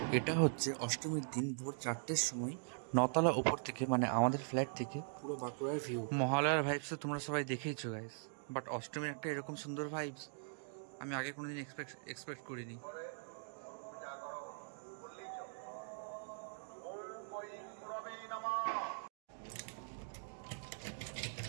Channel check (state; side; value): silent; left; digital silence